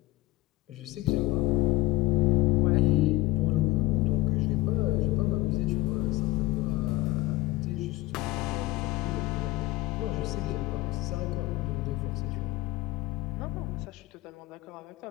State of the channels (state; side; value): quieter; right; 19.4 dB